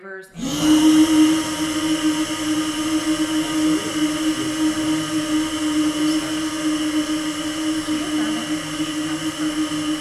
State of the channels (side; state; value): both; identical; correlation 1.00